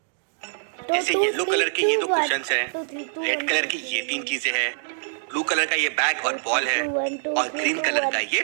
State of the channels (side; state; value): left; silent; digital silence